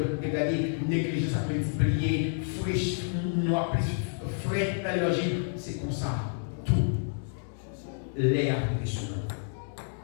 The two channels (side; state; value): right; silent; digital silence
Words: dégradé, négligence à multiplier, fraîche, noir, frais dans l'énergie, c'est comme ça. Tout. L'air est sur